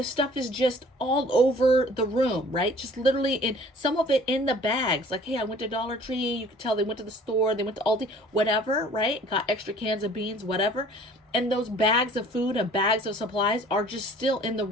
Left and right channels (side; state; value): both; normal; correlation 0.51